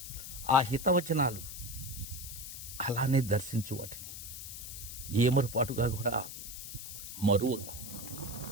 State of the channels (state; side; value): noise; left; hiss, 9 dB below the sound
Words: ఆ హితవచనాలు అలానే దర్శించు, వాటిని ఏమరుపాటుగా కూడా మరువకు.